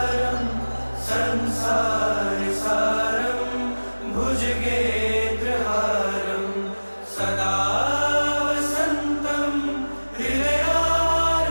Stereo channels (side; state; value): both; inverted; correlation -1.00